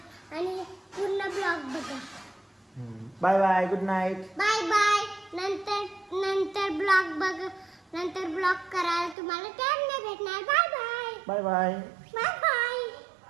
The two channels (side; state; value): left; drops out; at 9.2 s